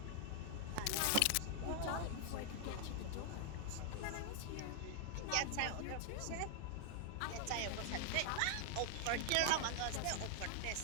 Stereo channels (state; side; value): different; both; correlation 0.00